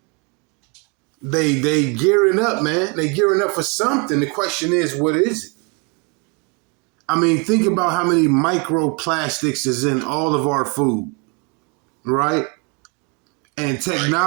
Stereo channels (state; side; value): quieter; left; 32.8 dB